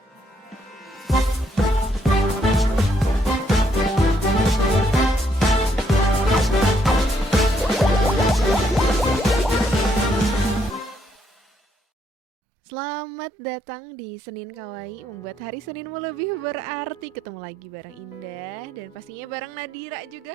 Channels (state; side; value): normal; both; correlation 0.73